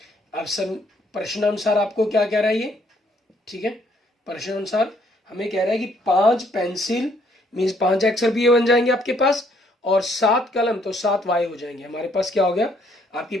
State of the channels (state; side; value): normal; both; correlation 0.67